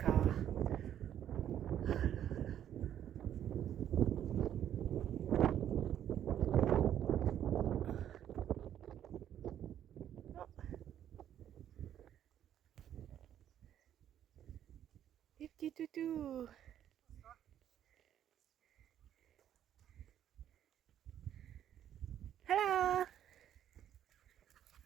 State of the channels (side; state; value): left; quieter; 10.5 dB